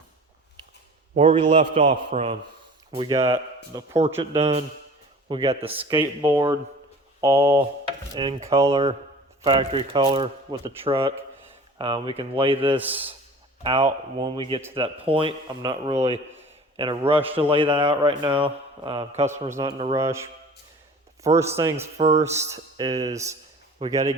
where we left off from, we got the portrait done. We got the skateboard all in color, factory color with the truck. We can lay this out when we get to that point. I'm not really in a rush to lay that out right now. Customer's not in a rush. First things first is we got to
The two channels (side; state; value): both; normal; correlation 0.43